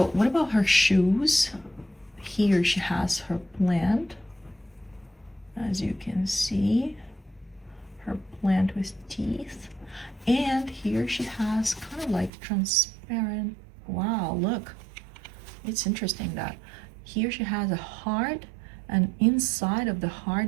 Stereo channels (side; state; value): left; drops out; at 12.3 s